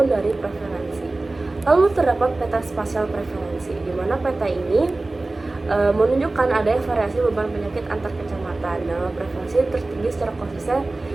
dari prevalensi. Lalu terdapat peta spasial prevalensi, di mana peta ini menunjukkan adanya variasi beban penyakit antar kecamatan. Nah, prevalensi tertinggi secara konsisten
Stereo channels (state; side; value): quieter; left; 3.1 dB